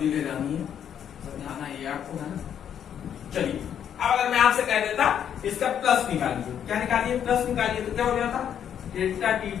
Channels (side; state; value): right; quieter; 9.1 dB